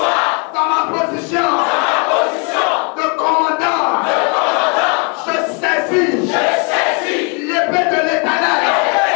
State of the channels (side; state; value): right; quieter; 35.7 dB